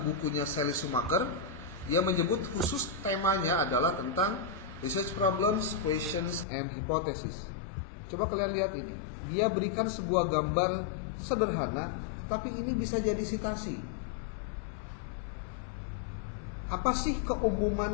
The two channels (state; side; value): drops out; right; at 6.5 s